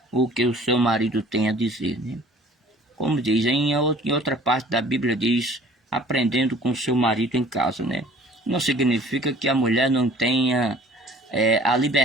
o que o seu marido tem a dizer, né? Como diz, em outra parte da Bíblia diz, aprendendo com seu marido em casa, né? Não significa que a mulher não tenha a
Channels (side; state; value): both; normal; correlation 0.51